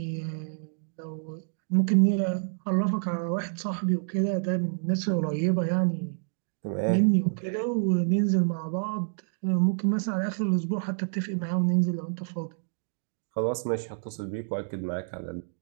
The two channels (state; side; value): silent; left; digital silence